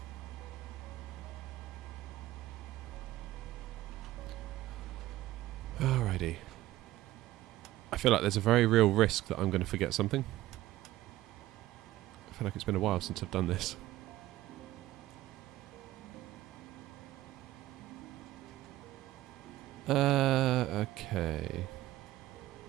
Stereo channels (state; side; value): quieter; left; 15.8 dB